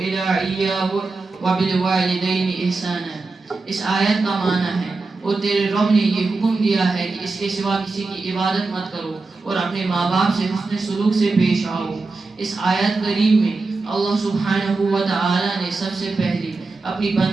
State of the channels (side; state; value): left; quieter; 3.7 dB